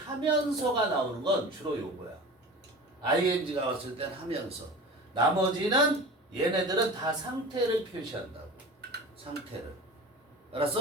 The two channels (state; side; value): normal; both; correlation 0.35